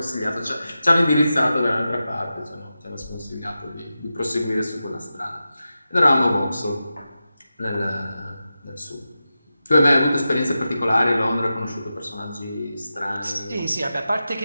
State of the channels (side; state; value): both; inverted; correlation -0.91